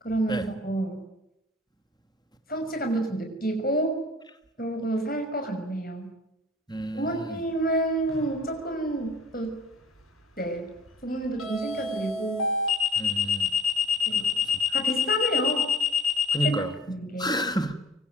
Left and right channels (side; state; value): both; normal; correlation 0.48